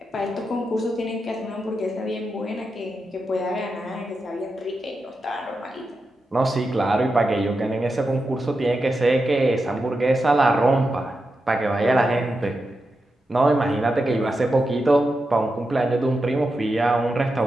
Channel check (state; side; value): normal; both; correlation 0.88